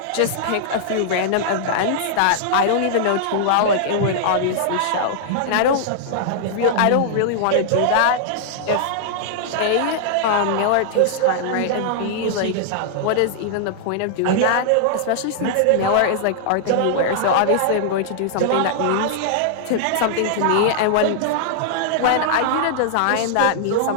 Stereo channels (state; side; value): different; both; correlation -0.01